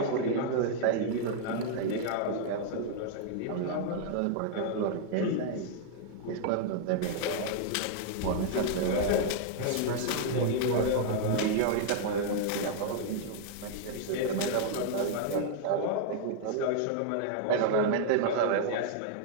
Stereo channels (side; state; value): both; different; correlation -0.01